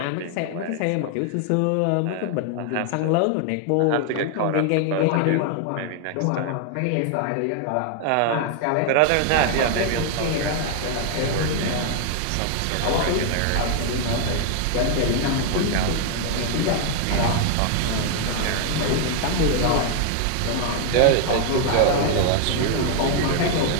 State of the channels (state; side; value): different; both; correlation 0.00